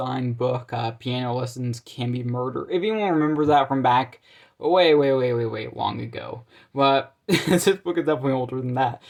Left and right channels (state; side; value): identical; both; correlation 1.00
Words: book, Piano Lessons Can Be Murder. If anyone remembers that from back way long ago. But this book is definitely older than that.